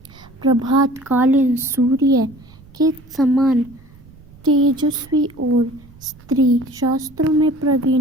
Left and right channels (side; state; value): right; noise; rumble, 24 dB below the sound